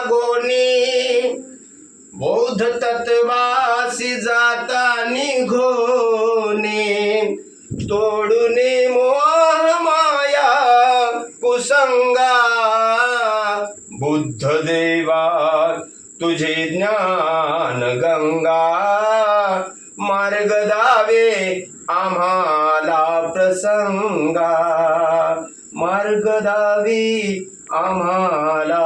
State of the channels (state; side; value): identical; both; correlation 1.00